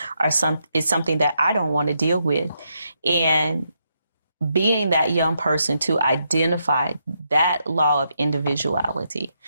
is something that I don't want to deal with. And being that young person to identify that law of individuality,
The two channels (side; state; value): both; inverted; correlation -0.81